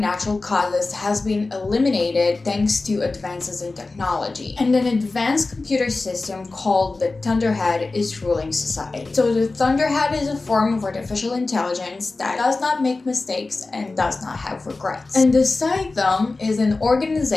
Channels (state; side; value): quieter; right; 3.5 dB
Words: causes has been eliminated thanks to advances in technology, and an advanced computer system called the Thunderhead is ruling society. So the Thunderhead is a form of artificial intelligence that does not make mistakes and does not have regrets. And the Them is an